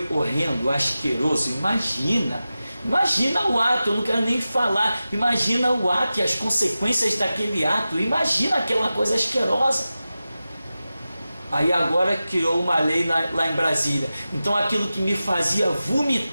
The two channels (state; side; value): inverted; both; correlation -0.94